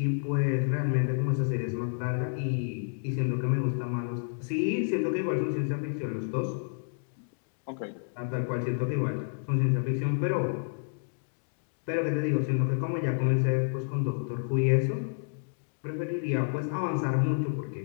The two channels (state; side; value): silent; right; digital silence